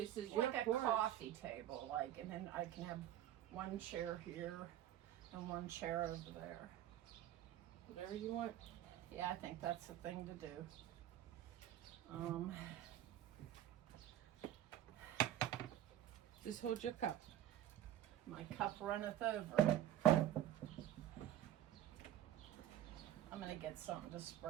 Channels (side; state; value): left; quieter; 12.1 dB